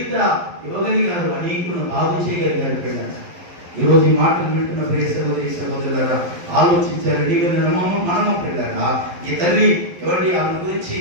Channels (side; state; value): left; late; 11 ms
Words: ఇవ్వగలిగారు, అనేకులను బాగు చేయగలిగారు. పిల్లలు ఈరోజు ఈ మాటలు వింటున్న ప్రియ సహోదరి సహోదరులారా ఆలోచించారు. మనము పిల్లరా ఈ తల్లి ఎవరి ఆమె గురించి